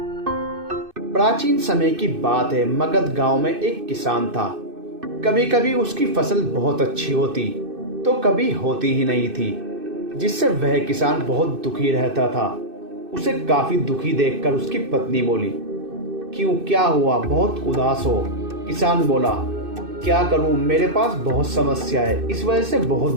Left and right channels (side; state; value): left; late; 2.6 ms